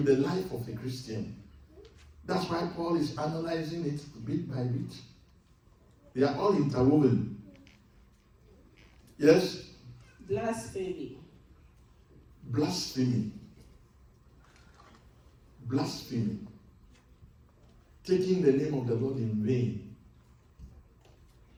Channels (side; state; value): both; identical; correlation 1.00